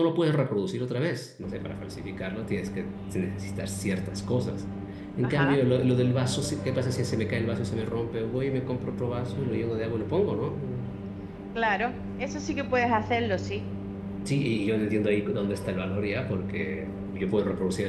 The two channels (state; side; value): identical; both; correlation 1.00